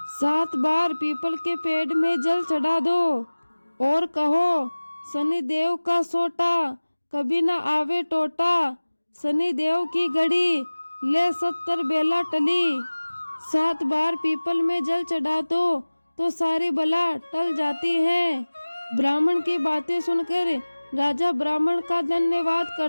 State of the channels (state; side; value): inverted; both; correlation -1.00